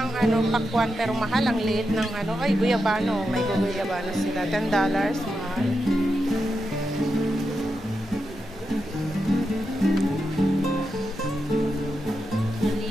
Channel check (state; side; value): normal; both; correlation 0.87